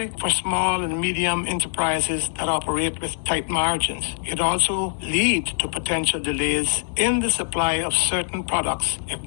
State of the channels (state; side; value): silent; right; digital silence